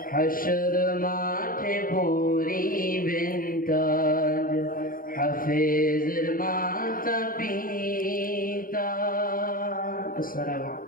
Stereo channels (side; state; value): right; late; 0.41 ms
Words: হাশর মাঠে পরিবেন তাজ হাফেজের মাতা পিতা। আসসালামু